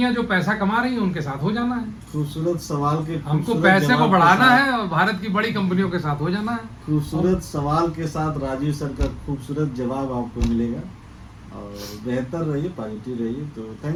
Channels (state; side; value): identical; both; correlation 1.00